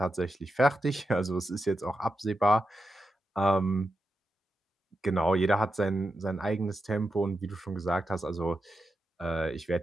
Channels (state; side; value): normal; both; correlation 0.88